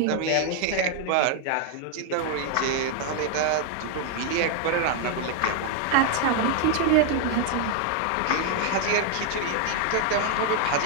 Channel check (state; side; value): different; both; correlation 0.00